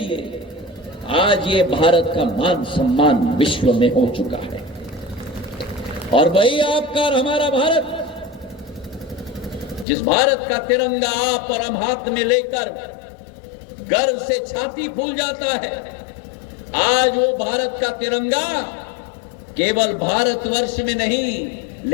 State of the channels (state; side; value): drops out; right; at 9.9 s